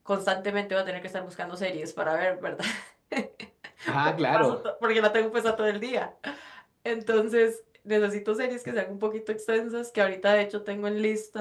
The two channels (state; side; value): identical; both; correlation 1.00